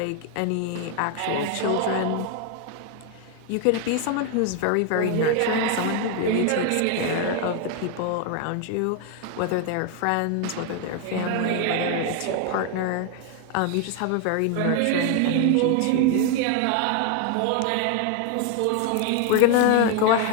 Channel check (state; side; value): different; both; correlation 0.01